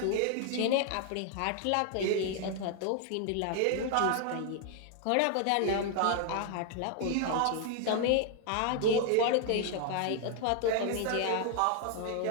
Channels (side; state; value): both; different; correlation 0.00